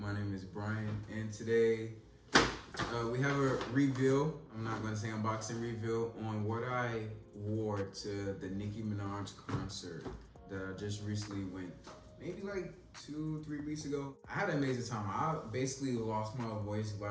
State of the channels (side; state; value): both; identical; correlation 1.00